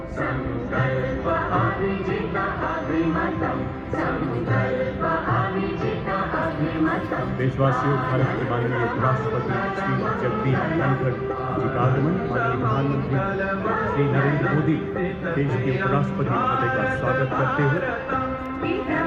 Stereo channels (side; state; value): both; identical; correlation 1.00